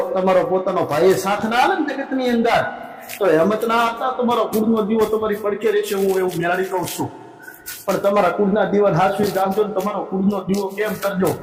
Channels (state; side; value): identical; both; correlation 1.00